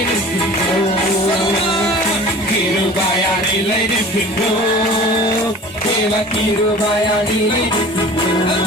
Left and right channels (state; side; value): normal; both; correlation 0.42